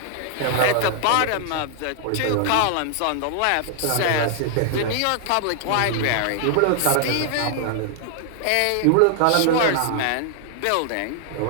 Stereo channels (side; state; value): both; different; correlation 0.00